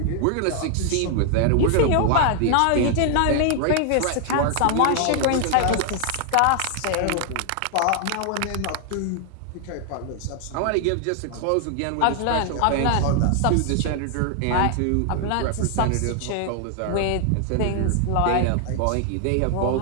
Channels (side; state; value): both; different; correlation 0.00